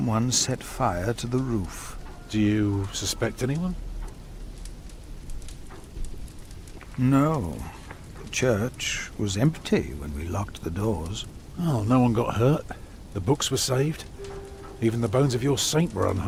set fire to the roof. Do you suspect anyone? No. The church was empty when we locked the doors. Oh, no one got hurt. The books were saved. Even the bones of your saint were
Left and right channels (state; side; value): identical; both; correlation 1.00